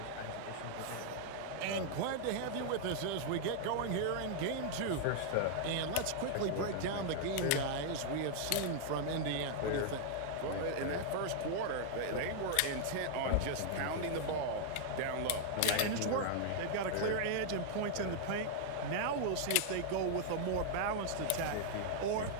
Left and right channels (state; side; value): different; both; correlation -0.01